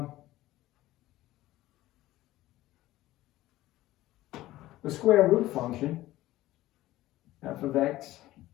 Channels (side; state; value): right; quieter; 16.2 dB